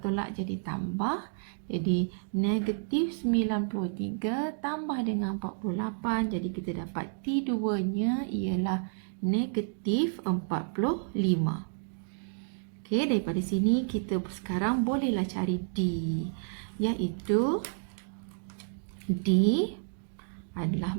jadi tambah. Jadi negatif 93 tambah dengan 48. Jadi kita dapat T2-nya ialah negatif 45. Daripada sini kita sekarang bolehlah cari D, iaitu D adalah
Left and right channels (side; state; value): left; silent; digital silence